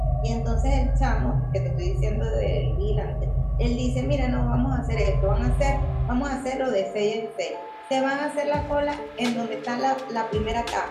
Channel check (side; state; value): both; identical; correlation 1.00